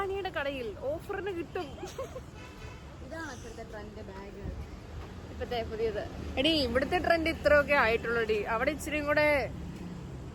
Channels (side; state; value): both; identical; correlation 1.00